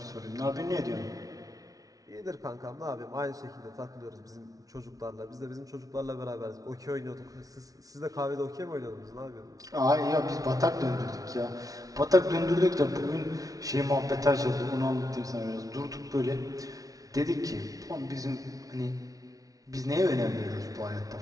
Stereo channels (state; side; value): late; left; 0.18 ms